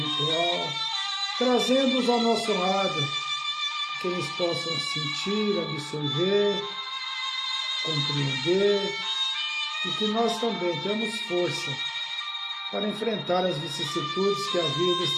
trazendo-os ao nosso lado, que eles possam sentir, absorver, compreender, e que nós também temos força para enfrentar as vicissitudes que a vida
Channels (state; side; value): identical; both; correlation 1.00